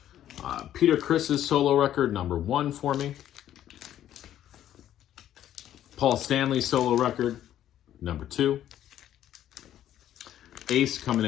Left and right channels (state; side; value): quieter; right; 11.6 dB